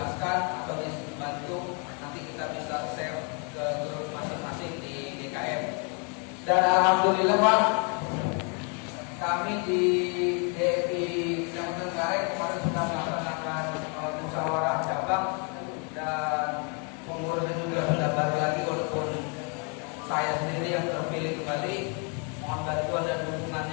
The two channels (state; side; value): quieter; right; 36.4 dB